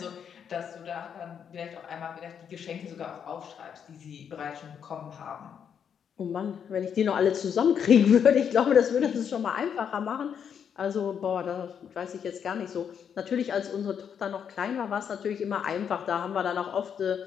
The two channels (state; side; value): quieter; right; 7.8 dB